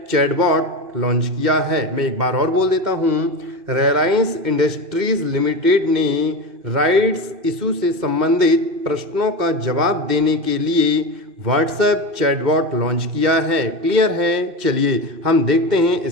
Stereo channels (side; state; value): left; late; 2.6 ms